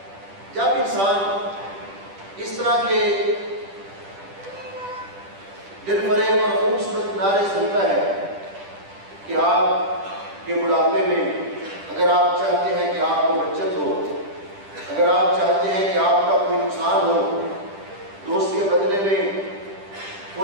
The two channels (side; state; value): left; late; 10 ms